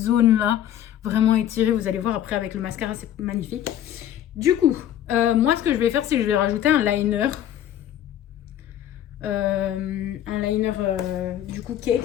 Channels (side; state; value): right; quieter; 11.1 dB